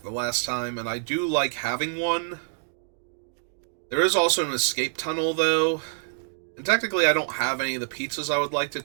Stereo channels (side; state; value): left; silent; digital silence